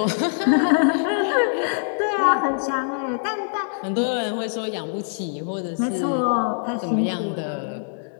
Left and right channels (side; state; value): right; silent; digital silence